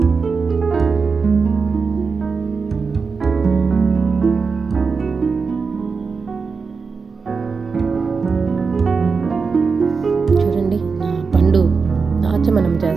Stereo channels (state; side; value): quieter; left; 5.0 dB